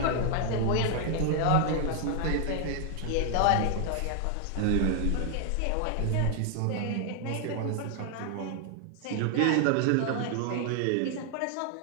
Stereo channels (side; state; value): both; different; correlation 0.00